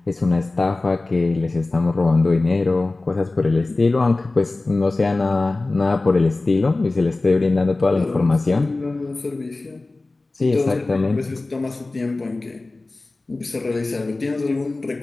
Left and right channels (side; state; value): right; quieter; 3.2 dB